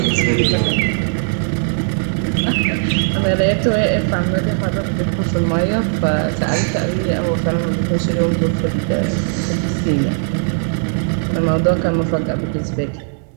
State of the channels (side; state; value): left; silent; digital silence